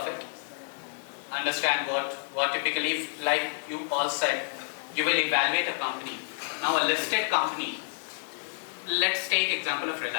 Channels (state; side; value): silent; right; 58 dB below the other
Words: it. Understand what typically, like you all said, you will evaluate a company. Now a listed company, let's take example of